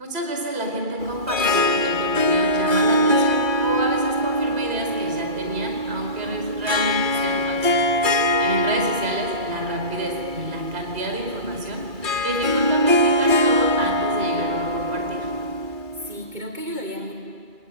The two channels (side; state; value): left; late; 2.3 ms